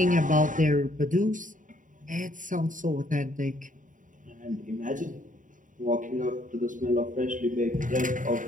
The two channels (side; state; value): left; late; 0.38 ms